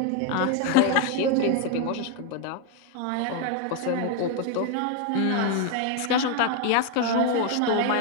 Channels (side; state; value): both; different; correlation 0.01